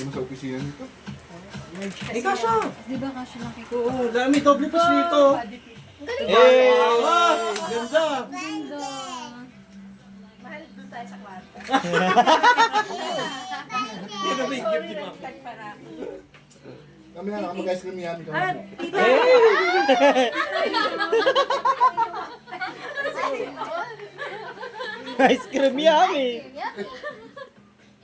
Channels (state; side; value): identical; both; correlation 1.00